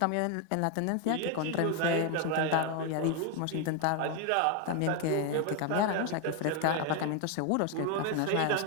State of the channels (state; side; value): different; both; correlation 0.01